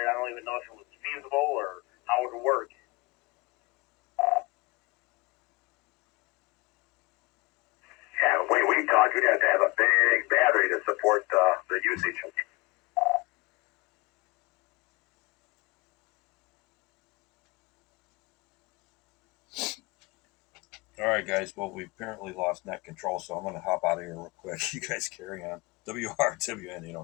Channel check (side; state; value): right; quieter; 24.9 dB